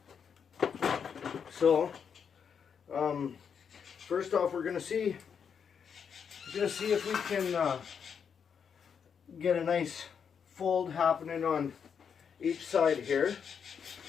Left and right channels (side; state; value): right; quieter; 7.0 dB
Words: So, first off, we're gonna see if we can get a nice fold happening on each side here.